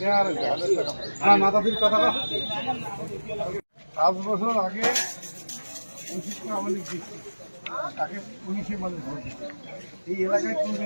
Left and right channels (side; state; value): both; inverted; correlation -1.00